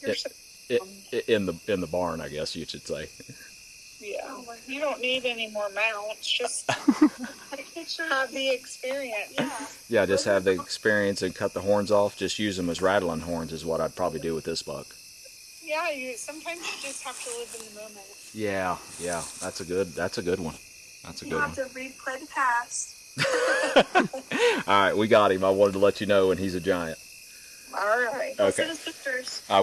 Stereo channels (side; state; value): both; identical; correlation 1.00